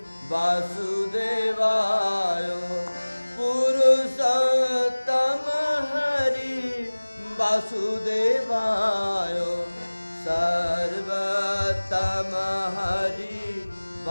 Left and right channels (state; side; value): inverted; both; correlation -1.00